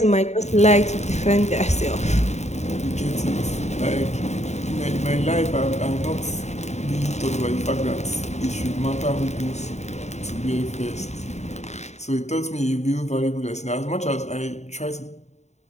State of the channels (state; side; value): late; right; 0.33 ms